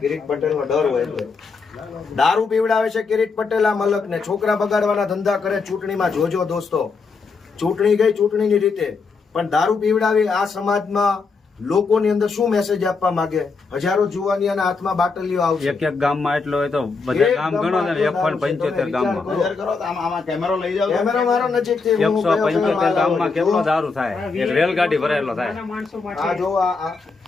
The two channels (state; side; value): quieter; right; 4.6 dB